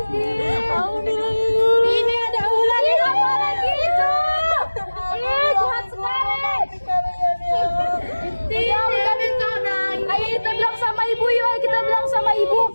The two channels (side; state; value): both; inverted; correlation -1.00